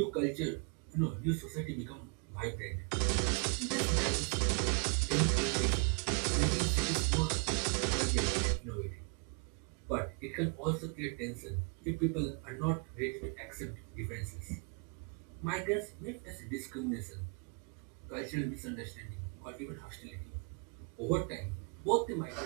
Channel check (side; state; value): left; quieter; 36.3 dB